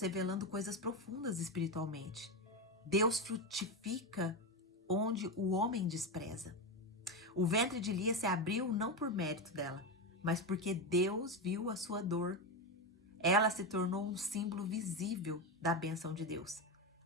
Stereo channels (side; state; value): both; normal; correlation 0.14